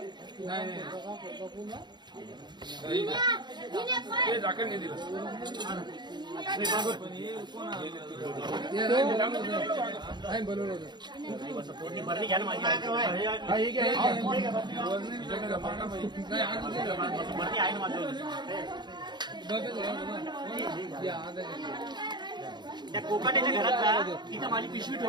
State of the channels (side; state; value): left; late; 0.21 ms